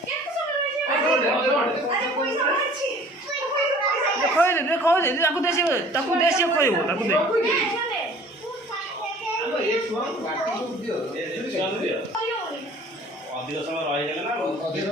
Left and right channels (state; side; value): normal; both; correlation 0.49